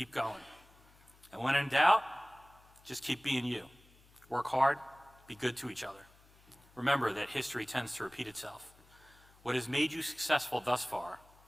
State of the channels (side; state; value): left; noise; hum, 27 dB below the sound